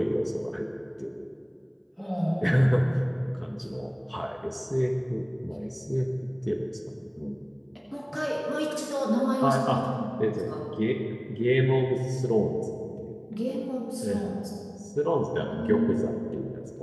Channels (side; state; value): both; identical; correlation 1.00